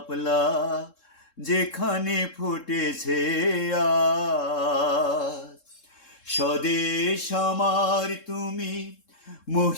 যেখানে ফুটেছে আজ। স্বদেশ আমার তুমি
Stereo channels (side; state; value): right; late; 3.7 ms